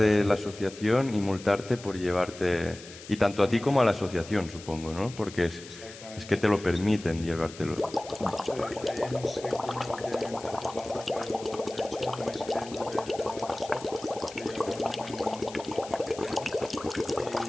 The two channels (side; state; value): left; noise; hiss, 16 dB below the sound